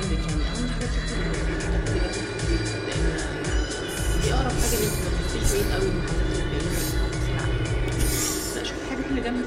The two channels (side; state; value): both; identical; correlation 1.00